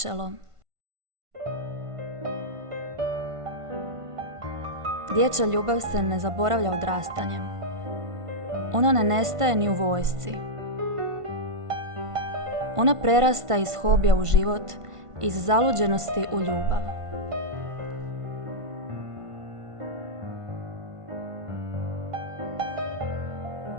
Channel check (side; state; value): left; late; 1.5 ms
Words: Dječja ljubav se ne zaboravlja odrastanjem. Ona ne nestaje ni u vojsci. Ona prerasta iz hobija u život, iz zaluđenosti u ljubav.